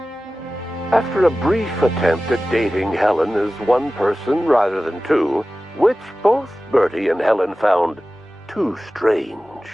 After a brief attempt at dating Helen as one person rather than two, which both Bertie and Helen found too strange,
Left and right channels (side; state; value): both; normal; correlation 0.96